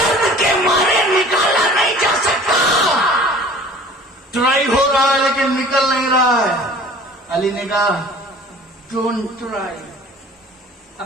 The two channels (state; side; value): normal; both; correlation 0.47